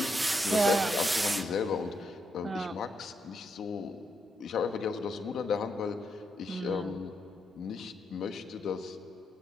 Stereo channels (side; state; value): both; normal; correlation 0.81